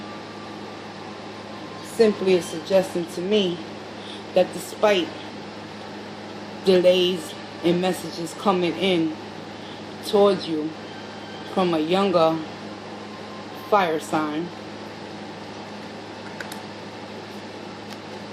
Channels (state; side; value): identical; both; correlation 1.00